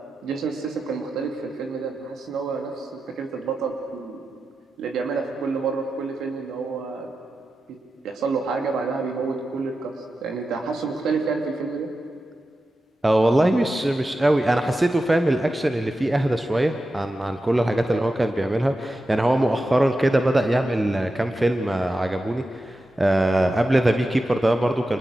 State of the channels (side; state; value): both; normal; correlation 0.91